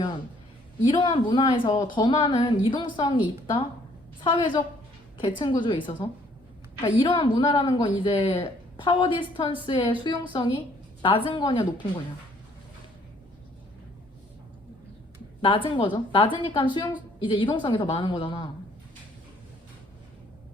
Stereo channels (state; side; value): normal; both; correlation 0.62